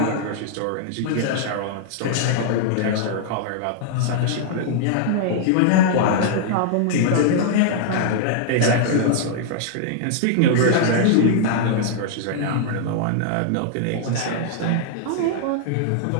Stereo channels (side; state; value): both; different; correlation -0.01